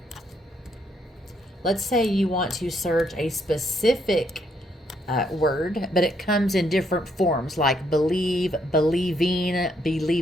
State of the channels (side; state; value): both; normal; correlation 0.73